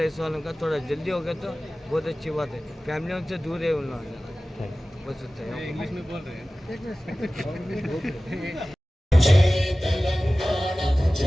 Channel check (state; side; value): normal; both; correlation 0.97